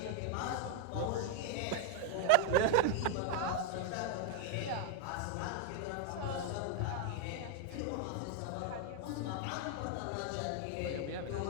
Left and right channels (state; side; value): different; both; correlation 0.00